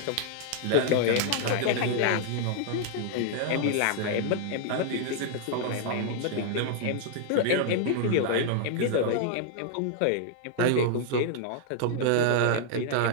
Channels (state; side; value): different; both; correlation 0.00